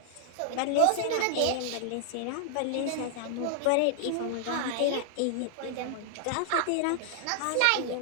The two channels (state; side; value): different; both; correlation 0.00